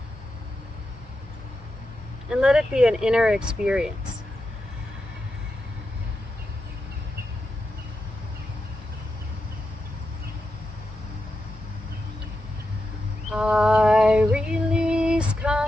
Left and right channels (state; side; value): normal; both; correlation 0.88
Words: and let it be an inner experience. I release